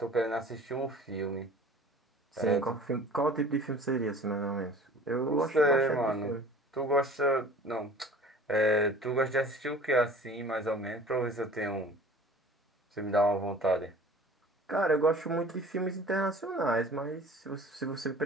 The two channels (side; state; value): both; normal; correlation 0.45